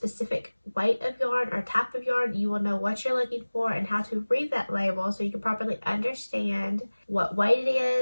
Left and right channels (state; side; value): inverted; both; correlation -1.00